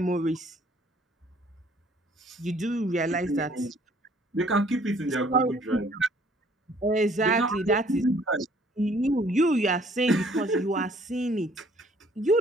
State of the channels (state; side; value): normal; both; correlation 0.59